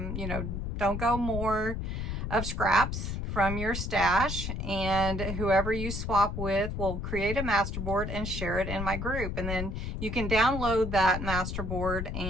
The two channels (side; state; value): left; noise; rumble, 4 dB below the sound